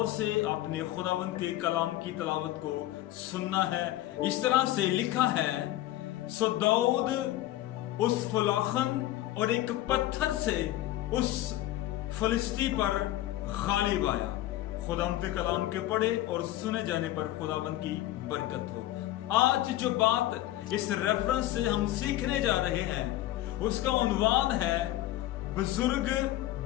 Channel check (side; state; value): right; quieter; 14.9 dB